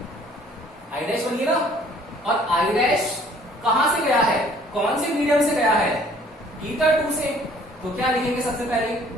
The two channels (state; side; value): normal; both; correlation 0.57